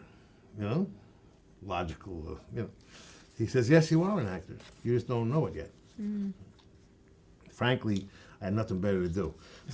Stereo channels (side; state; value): both; identical; correlation 1.00